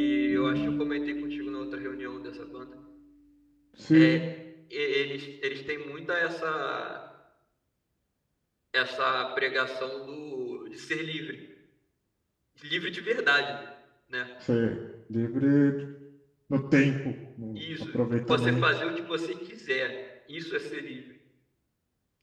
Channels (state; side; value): identical; both; correlation 1.00